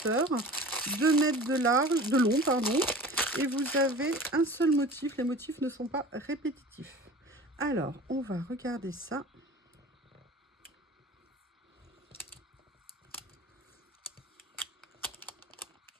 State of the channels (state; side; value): normal; both; correlation 0.40